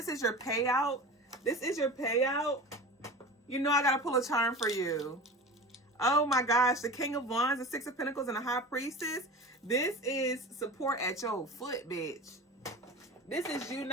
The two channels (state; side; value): normal; both; correlation 0.33